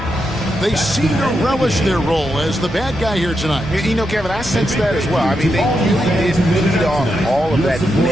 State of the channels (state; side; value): normal; both; correlation 0.84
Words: They seem to relish their role as the bad guy here tonight. You know, Kevin, I sense that as well. I mean, they really did feed off all of that